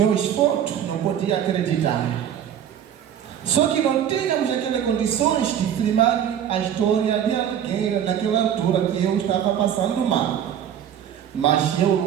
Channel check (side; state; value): left; quieter; 9.6 dB